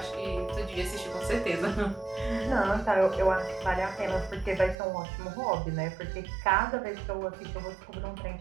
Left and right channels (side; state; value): left; drops out; at 4.8 s